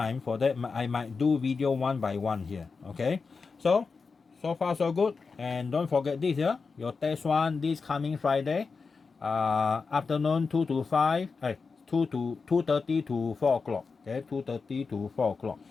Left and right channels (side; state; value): right; quieter; 4.8 dB